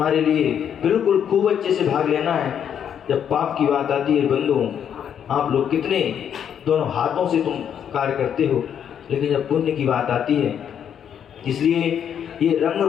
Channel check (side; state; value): right; quieter; 8.7 dB